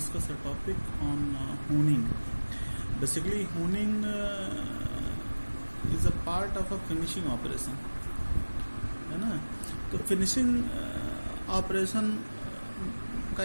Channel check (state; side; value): inverted; both; correlation -1.00